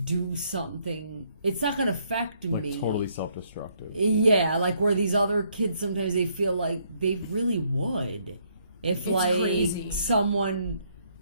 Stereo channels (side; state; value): both; inverted; correlation -0.70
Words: do something. It's not gonna affect me. Totally self-destructive. Yeah, where these other kids sometimes they feel like they really would, if crazy. Someone